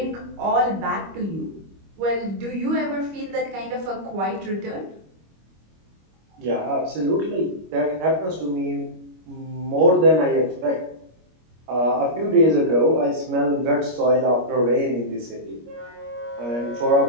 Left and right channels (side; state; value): left; late; 25 ms